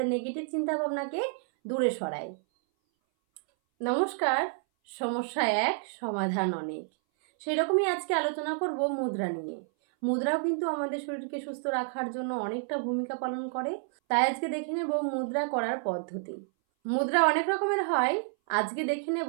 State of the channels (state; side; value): silent; left; 58 dB below the other